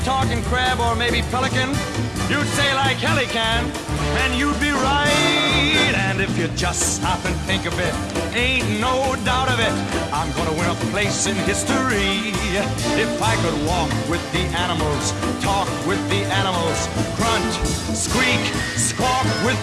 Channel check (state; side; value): identical; both; correlation 1.00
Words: talk in crab or maybe pelican? You'd say like hell he can, and you'd be right. And if you just stop and think of it, ain't no doubt of it, I'm gonna win a place in history. If I could walk with the animals, talk with the animals, grunt, squeak, squawk